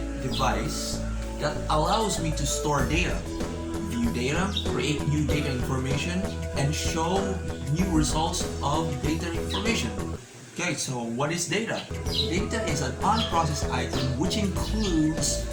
device that allows me to store data, view data, create new data information, and show new results of data information. Okay, so what is data? Data is an unprocessed item which includes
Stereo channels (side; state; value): both; identical; correlation 1.00